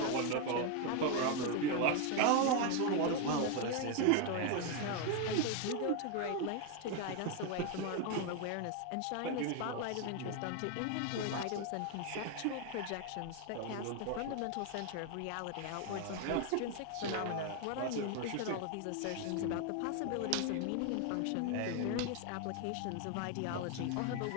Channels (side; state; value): both; different; correlation 0.01